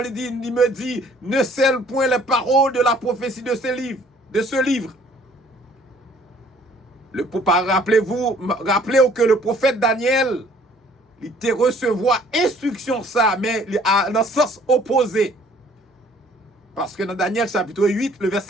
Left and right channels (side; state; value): both; normal; correlation 0.57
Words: il me dit, ne scelle point les paroles de la prophétie de ce livre. Rappelez-vous que le prophète Daniel, il était recevoir instruction ça, mais dans le sens opposé. Parce que dans Daniel chapitre 8, le